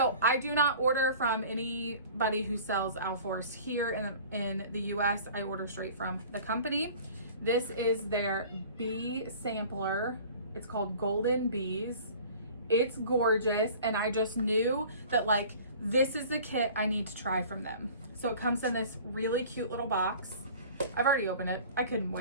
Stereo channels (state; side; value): inverted; both; correlation -0.45